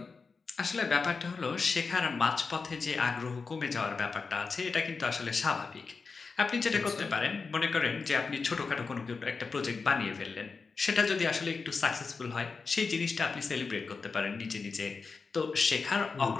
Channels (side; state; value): right; quieter; 4.7 dB